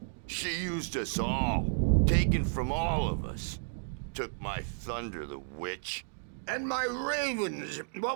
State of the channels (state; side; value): silent; left; digital silence